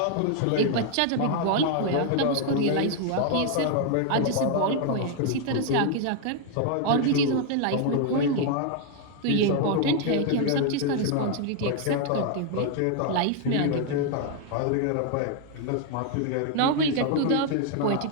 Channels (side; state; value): both; different; correlation 0.00